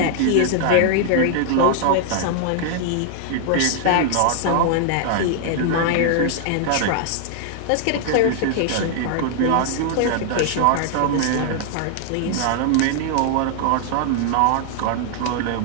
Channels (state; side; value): different; both; correlation 0.00